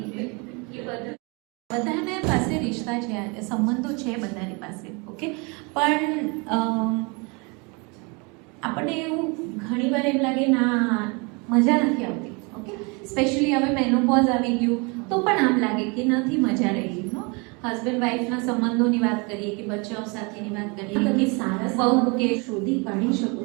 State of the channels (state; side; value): quieter; left; 30.3 dB